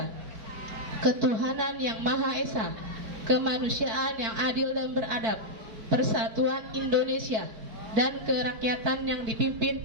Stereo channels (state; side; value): late; left; 4.4 ms